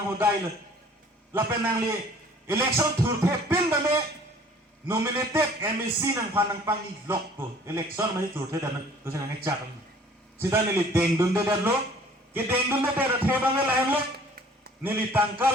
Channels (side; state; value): both; normal; correlation 0.53